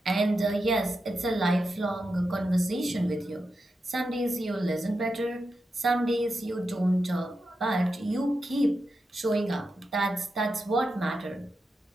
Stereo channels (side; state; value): both; normal; correlation 0.88